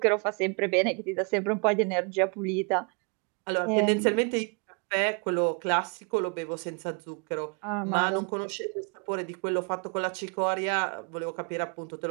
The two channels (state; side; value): quieter; left; 36.2 dB